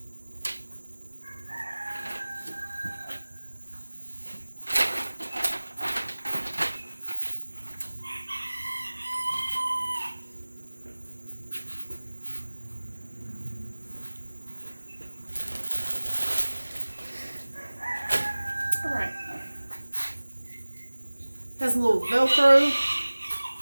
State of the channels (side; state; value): both; inverted; correlation -1.00